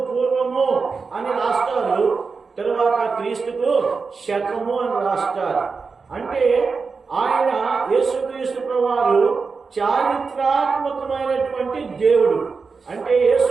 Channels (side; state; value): left; quieter; 4.8 dB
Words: పూర్వము అని రాస్తారు, తర్వాత క్రీస్తుకు శకము అని రాస్తారు. అంటే ఆయన యేసుక్రీస్తు ప్రభువారు చారిత్రాత్మకమైనటువంటి దేవుడు. అంటే